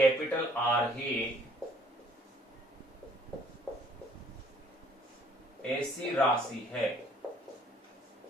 आर ही ऐसी राशि है,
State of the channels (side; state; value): both; normal; correlation 0.60